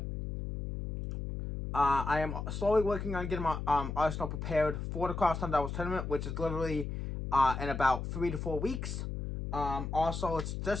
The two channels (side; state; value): left; noise; hum, 4 dB below the sound